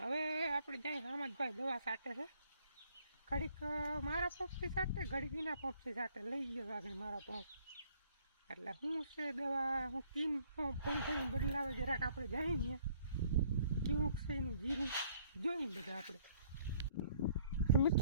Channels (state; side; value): inverted; both; correlation -0.62